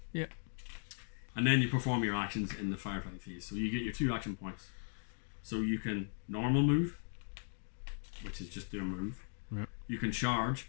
Yeah. And then you perform your actions in the firefight phase. So you get your 2 action points. So you can normal move, which is just do a move. Yeah. You can charge.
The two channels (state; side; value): silent; right; 52 dB below the other